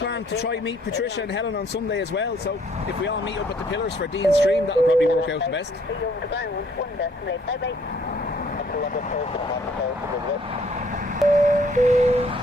to try meet Patricia and Helen on Sunday as well, so if we all meet up at the pillars for Dean's stream, that'll probably work out the best.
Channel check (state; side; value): normal; both; correlation 0.62